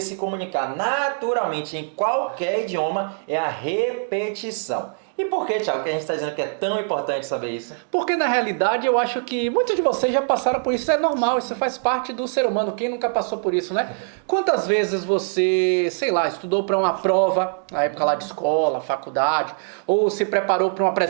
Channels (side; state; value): left; silent; digital silence